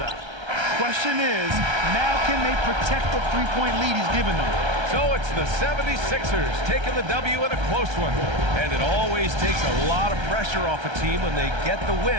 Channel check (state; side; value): late; left; 1.3 ms